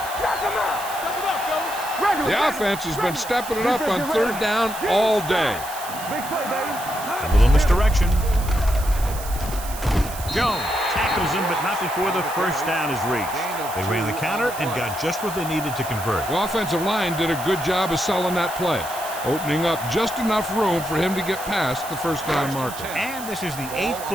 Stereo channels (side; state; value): right; noise; hiss, 12 dB below the sound